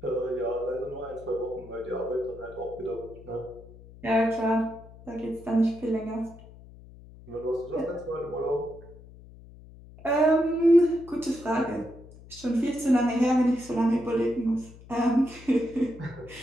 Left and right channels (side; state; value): left; noise; hum, 20 dB below the sound